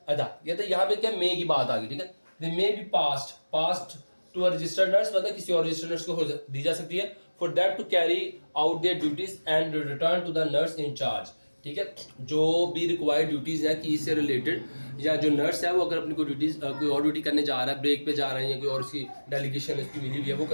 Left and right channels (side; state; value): both; inverted; correlation -1.00